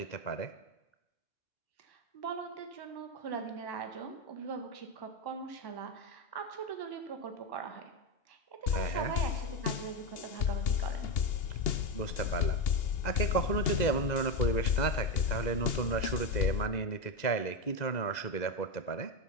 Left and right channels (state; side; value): late; right; 2.0 ms